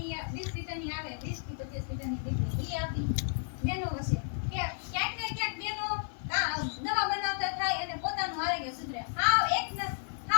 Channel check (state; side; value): silent; right; 56 dB below the other